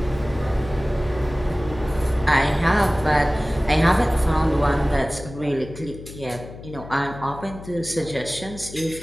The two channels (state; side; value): noise; left; hum, 14 dB below the sound